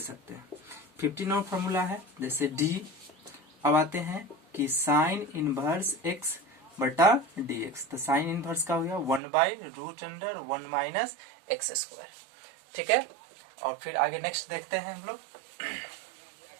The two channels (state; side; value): drops out; left; at 9.2 s